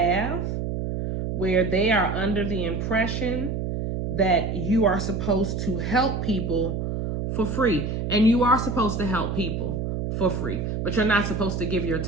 where they are under the impression that you are supposed to help people for free. And you are supposed to help people for free, but you're not supposed to give your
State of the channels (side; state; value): right; noise; hum, 2 dB below the sound